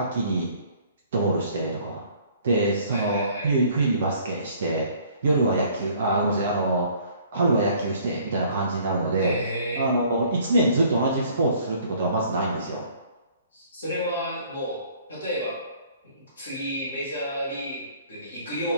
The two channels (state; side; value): inverted; both; correlation -0.57